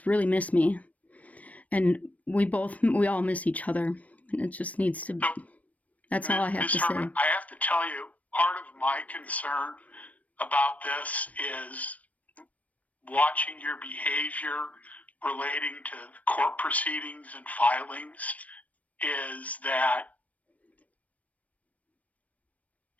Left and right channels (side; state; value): right; late; 0.069 ms